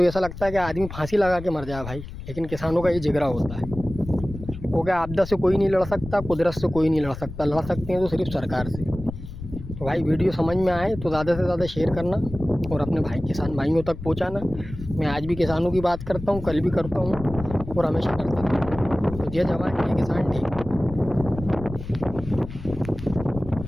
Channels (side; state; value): left; noise; rumble, 11 dB below the sound